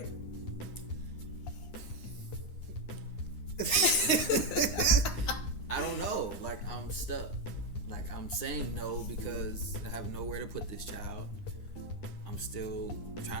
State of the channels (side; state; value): right; late; 9.7 ms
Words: I don't know. Like, I'm stuck. Like, I'm saying no because I have nowhere to put this child. I'm still